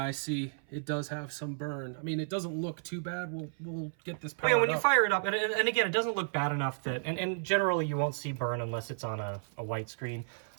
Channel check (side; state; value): left; silent; 56 dB below the other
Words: I see. It does have some burn. I mean, it doesn't look too bad. We'll get this powered yeah, when you up. fire it up, and again, it doesn't look bad enough that, and generally you won't see burn unless it's on a white screen.